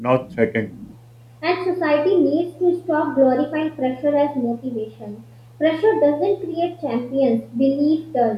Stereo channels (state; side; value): identical; both; correlation 1.00